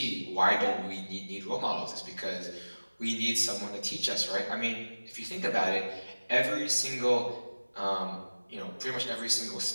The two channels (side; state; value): both; inverted; correlation -1.00